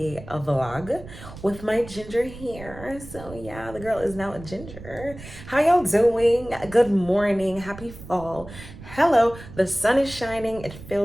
vlog with my ginger hair. So yeah, the girl is now a ginger. How y'all doing? Good morning, happy fall. Hello, the sun is shining. It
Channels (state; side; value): noise; right; rumble, 15 dB below the sound